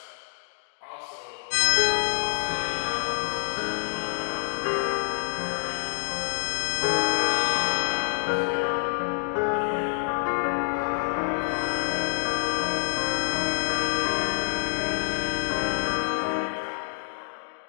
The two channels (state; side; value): silent; right; digital silence